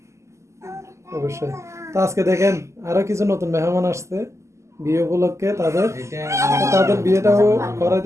অবশ্যই। তো আজকে দেখেন আরো কিছু নতুন মেহমান আসছে বিয়ে উপলক্ষে, তাদের তাদের বিয়েটাও করা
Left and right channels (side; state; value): left; late; 0.14 ms